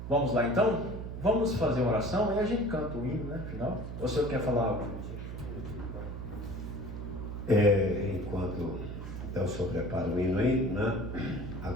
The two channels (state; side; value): noise; right; hum, 7 dB below the sound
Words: Vamos lá então? Vamos fazer uma oração e a gente canta o hino, né? Final. Ou o senhor quer falar algo? Enquanto então o senhor prepara o hino aí, né?